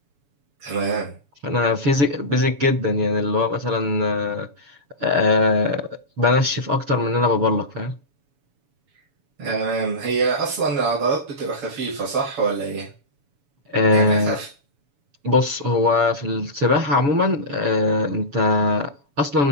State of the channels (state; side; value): late; left; 7.1 ms